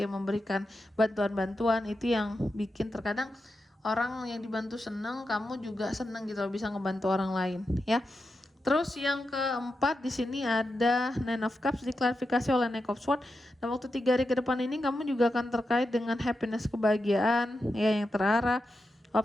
ya, memberikan bantuan-bantuan, itu yang bikin terkadang orang yang dibantu seneng, kamu juga seneng gitu bisa ngebantu orang lain ya. Terus yang keempat di sini ada Nine of Cups diklarifikasi oleh Knight of Swords. Dan waktu 3 hari ke depan ini kamu juga akan terkait dengan happiness, kebahagiaan ya yang terarah,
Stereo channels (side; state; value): both; normal; correlation 0.89